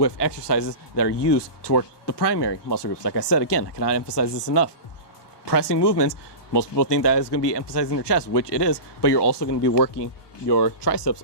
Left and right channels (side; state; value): right; late; 1.2 ms